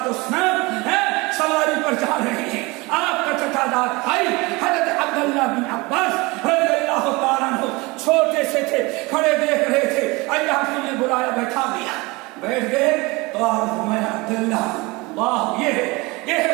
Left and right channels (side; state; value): left; quieter; 24.3 dB